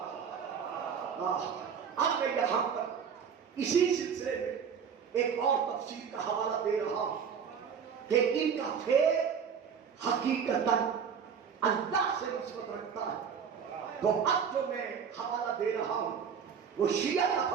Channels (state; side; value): quieter; left; 7.0 dB